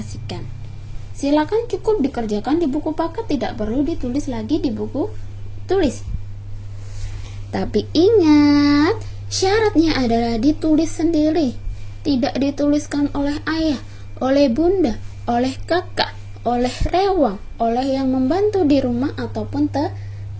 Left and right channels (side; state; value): both; identical; correlation 1.00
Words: Silakan cukup dikerjakan di buku paket, tidak perlu ditulis lagi di buku tulis. Tapi ingat, syaratnya adalah ditulis sendiri. Tidak dituliskan oleh ayah, oleh bunda, oleh kakak, oleh rewang, oleh yang membantu di rumah ataupun